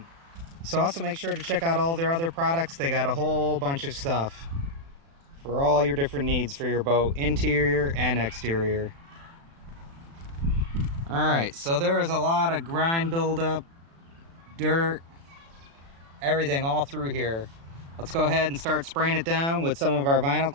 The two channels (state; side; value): late; left; 36 ms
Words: So also make sure to check out all their other products. They got a whole bunch of stuff for all your different needs for your boat, interior and exterior. Alright, so there is a lot of grime buildup, dirt, everything all through here. Let's go ahead and start spraying it down with some of our vinyl